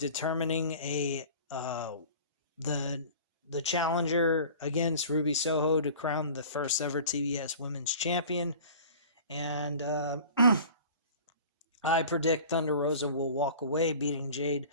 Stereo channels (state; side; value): inverted; both; correlation -0.42